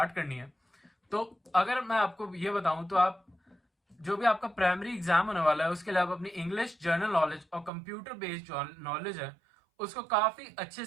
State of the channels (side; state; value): left; drops out; at 7.7 s